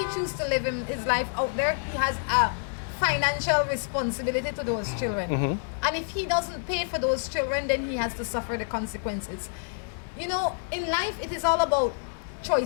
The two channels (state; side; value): silent; right; digital silence